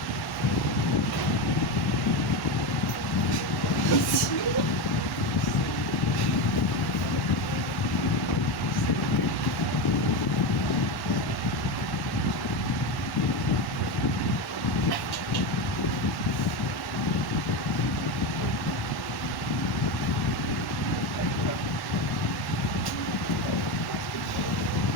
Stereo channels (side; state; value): right; late; 1.1 ms